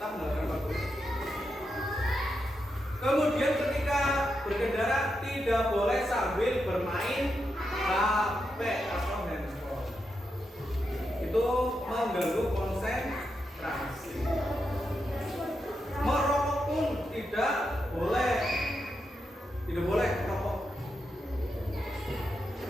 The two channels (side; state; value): both; normal; correlation 0.85